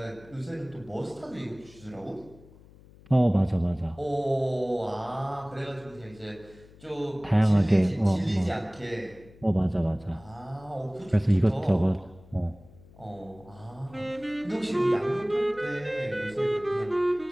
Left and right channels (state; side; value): noise; left; hum, 23 dB below the sound